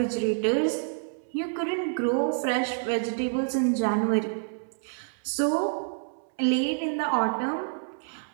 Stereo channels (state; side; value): silent; left; 59 dB below the other